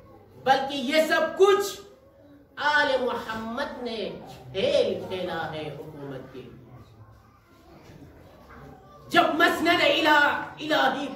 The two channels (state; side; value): identical; both; correlation 1.00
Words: بلکہ یہ سب کچھ آل محمد نے کھیل کھیلا ہے حکومت کے لیے۔ جب مسند الہی